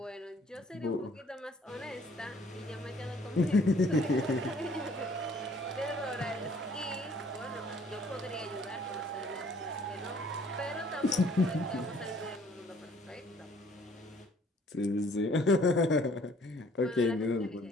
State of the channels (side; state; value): both; normal; correlation 0.59